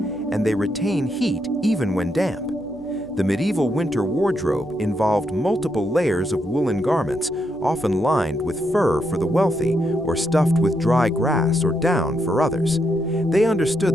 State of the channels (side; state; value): right; noise; hum, 21 dB below the sound